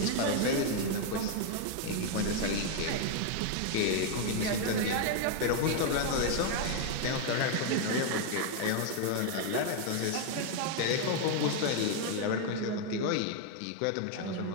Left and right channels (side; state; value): both; different; correlation 0.00